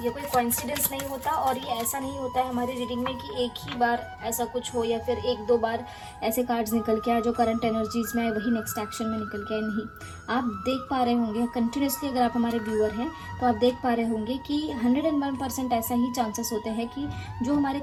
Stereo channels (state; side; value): identical; both; correlation 1.00